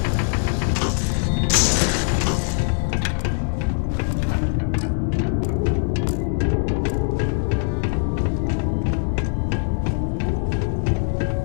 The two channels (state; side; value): silent; right; 58 dB below the other